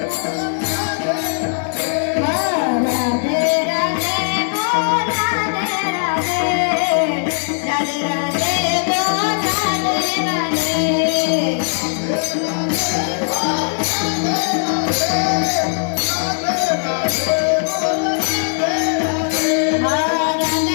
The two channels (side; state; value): right; silent; digital silence